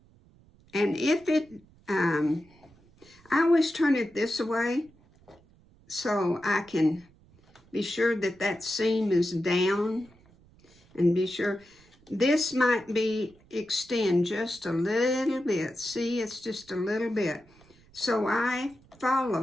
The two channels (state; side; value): noise; right; rumble, 28 dB below the sound